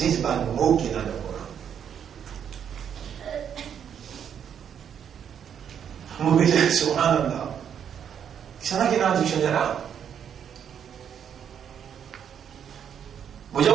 pas le mot qui est dans le Coran. Vous dites, subhanallah. Il y en a qui sont dans le dictionnaire. Vous dites,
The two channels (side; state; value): left; quieter; 8.4 dB